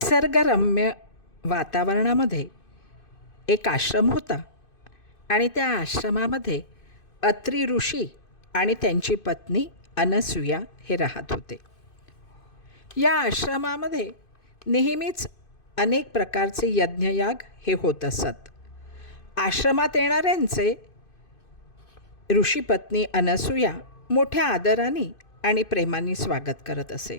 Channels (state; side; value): late; right; 2.5 ms